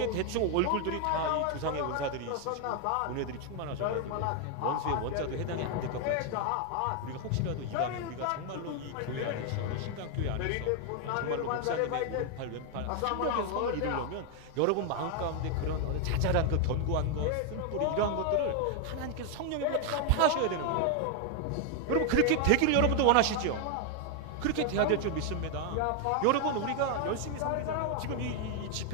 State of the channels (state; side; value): different; both; correlation 0.01